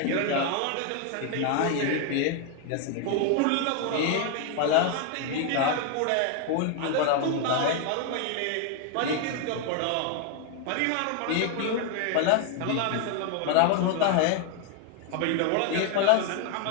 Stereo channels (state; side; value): different; both; correlation 0.01